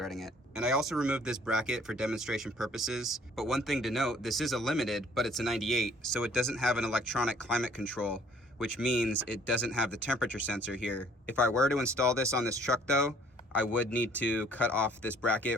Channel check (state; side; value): normal; both; correlation 0.58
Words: it. And I also removed this bracket for demonstration purposes. But one thing to note, this is a limited, but it's a 98, so it doesn't have an electronic climate control, which means it doesn't have the temperature sensor here. If I were to install this on this truck though, I would need to cut off this bracket